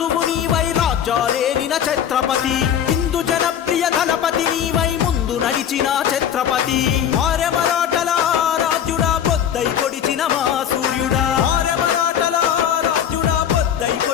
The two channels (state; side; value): quieter; right; 9.3 dB